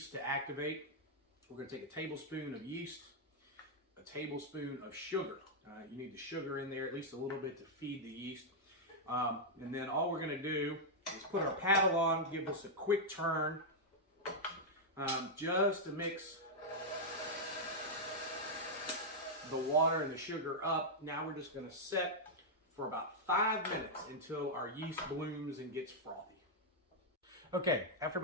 to activate. We're going to take a tablespoon of yeast, a tablespoon of sugar. You need the sugar in there at least a little bit to feed the yeast. And then all we're going to do is put our paddle on, give this a quick turn, just to mix the water and the sugar up. Now we're just going to set for about 5 minutes until our yeast blooms and gets frothy. Okay, after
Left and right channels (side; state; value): both; normal; correlation -0.05